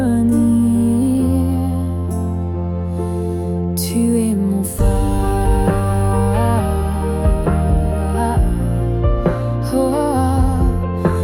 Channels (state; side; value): identical; both; correlation 1.00